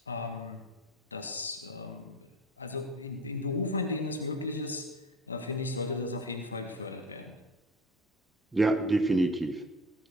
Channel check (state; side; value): normal; both; correlation 0.34